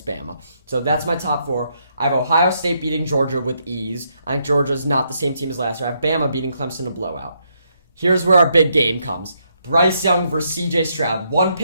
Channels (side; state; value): both; inverted; correlation -0.76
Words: Bama. So that's my top 4. I have Ohio State beating Georgia with ease. I think Georgia's not the same team as last year. I have Bama beating Clemson in a blowout. Here's where our big game comes. Bryce Young versus CJ Stroud. 1